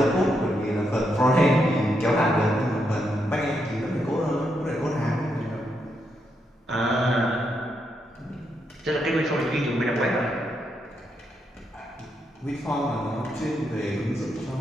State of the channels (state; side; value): normal; both; correlation 0.81